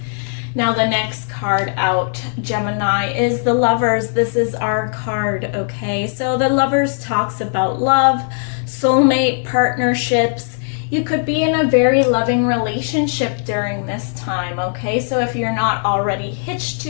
Now the next card out, Gemini, is the Lovers. This is our card, okay? So the Lovers talks about love, soulmate, partnerships. You could be in a very loving relationship during this time, okay? So if you're not already hitched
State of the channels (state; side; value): silent; right; digital silence